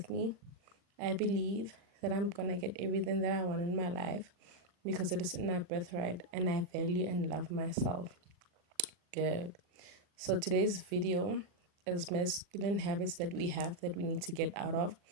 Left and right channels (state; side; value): late; left; 40 ms